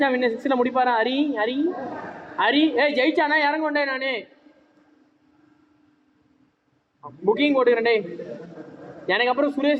வின்னு. 6ல முடிப்பாரா ஹரி? ஹரி ஹரி ஏய் ஜெயிச்சானா இறங்க கொண்டே நானே புக்கிங் போட்டுக்கிறேன்டே. எனக்கு அப்புறம்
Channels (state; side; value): identical; both; correlation 1.00